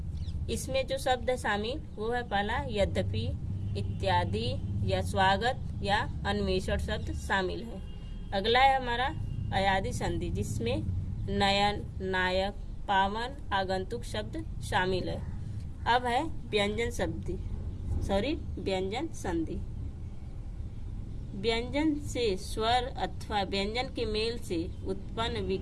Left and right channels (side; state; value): both; identical; correlation 1.00